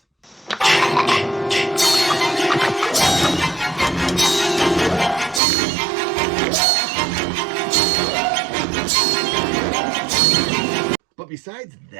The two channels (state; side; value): drops out; left; at 5.4 s